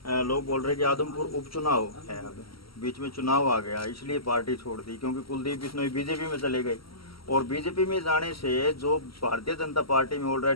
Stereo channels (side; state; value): right; late; 0.75 ms